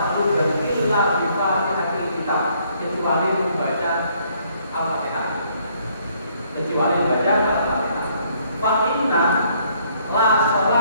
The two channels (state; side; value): inverted; both; correlation -0.66